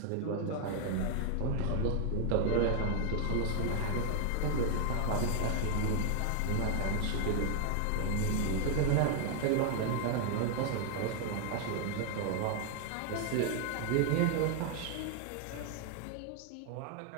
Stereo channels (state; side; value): different; both; correlation 0.00